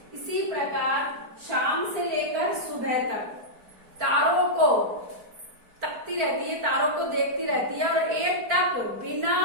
इसी प्रकार शाम से लेकर सुबह तक तारों को तकती रहती है, तारों को देखती रहती है और एक टक बिना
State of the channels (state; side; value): late; left; 4.4 ms